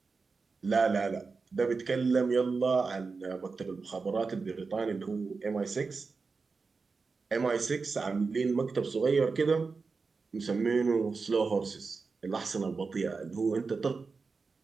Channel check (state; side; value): quieter; left; 4.5 dB